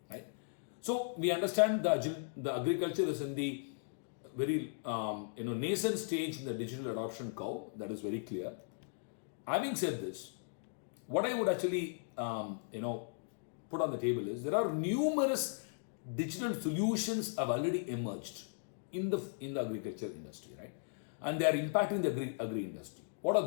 right? So we understand the agriculture is in the very nascent stage in the digital adoption curve. That is very clear. Having said this, what I would actually put on the table is there are numerous digital solutions have already emerged in the agriculture industry, right? And they are impacting the agri industry. What are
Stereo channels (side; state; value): right; silent; digital silence